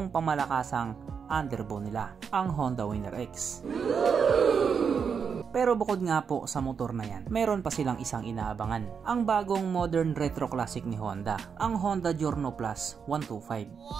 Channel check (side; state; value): left; quieter; 6.4 dB